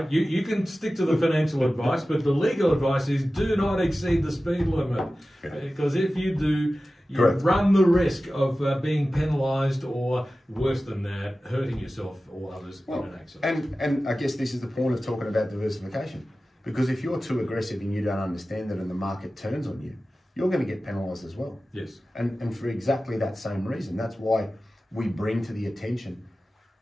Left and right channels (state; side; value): normal; both; correlation 0.95